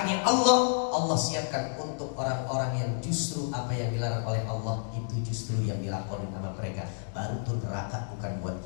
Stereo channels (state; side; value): silent; right; digital silence